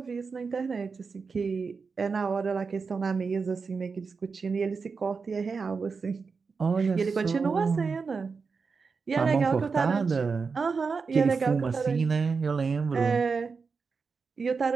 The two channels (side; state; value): left; quieter; 5.0 dB